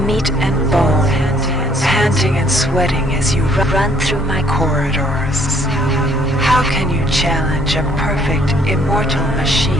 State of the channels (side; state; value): both; normal; correlation 0.64